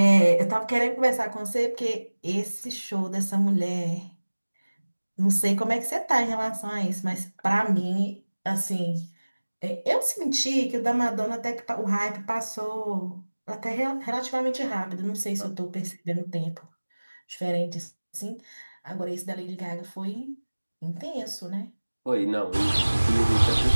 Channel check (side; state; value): both; inverted; correlation -1.00